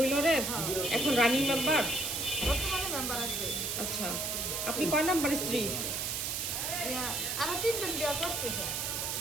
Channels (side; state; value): right; noise; hiss, 1 dB below the sound